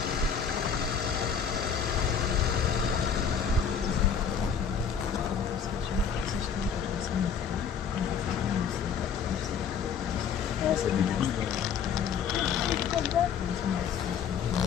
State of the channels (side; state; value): right; quieter; 7.0 dB